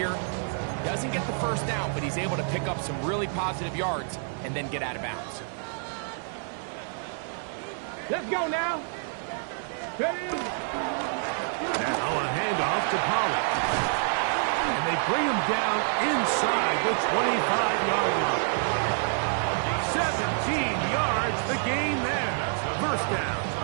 Doesn't get the first down, but he's able to pick up some really positive yards and then get out of bounds. Let's go now. Ready? Now a handoff to Pollard. And they bring him down inside the 25-yard line. 17 yards, the gain there. First down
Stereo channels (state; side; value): silent; left; 60 dB below the other